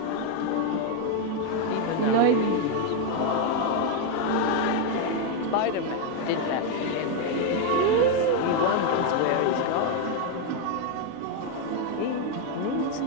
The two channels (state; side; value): different; both; correlation 0.02